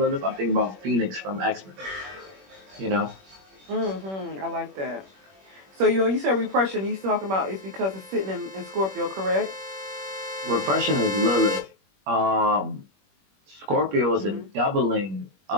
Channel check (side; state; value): left; late; 21 ms